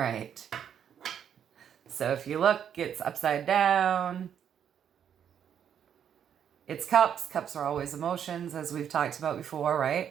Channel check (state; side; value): quieter; left; 8.8 dB